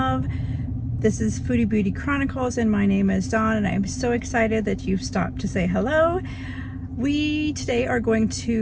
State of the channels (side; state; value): both; identical; correlation 1.00